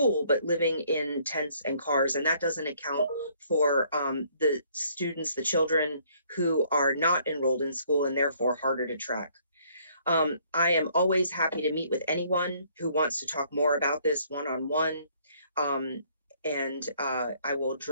but living in tents and cars. And that doesn't account for the students, the children who are not enrolled in school and therefore harder to track. I am always happy to meet with anyone who wants to talk more about this one-on-one. And I will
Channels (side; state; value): both; inverted; correlation -0.64